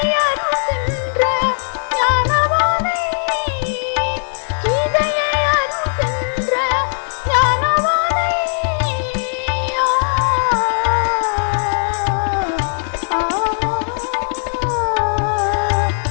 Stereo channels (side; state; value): right; silent; 58 dB below the other